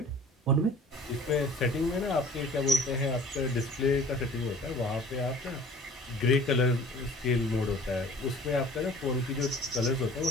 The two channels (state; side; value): normal; both; correlation 0.48